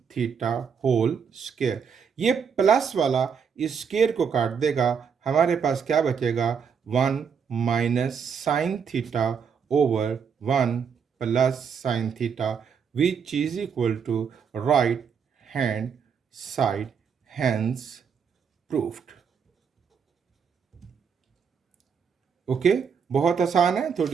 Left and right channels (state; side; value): quieter; left; 6.6 dB